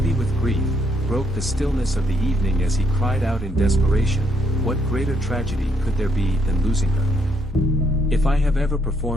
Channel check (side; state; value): both; normal; correlation 0.72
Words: with grief, broke the stillness of the evening as he cried out in desperation, "What greater tragedy could there be than losing her? If I have ever